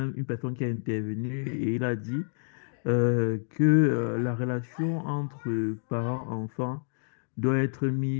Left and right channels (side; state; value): right; silent; digital silence